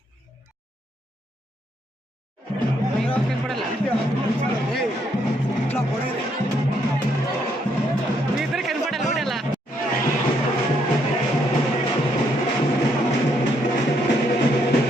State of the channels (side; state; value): both; normal; correlation 0.73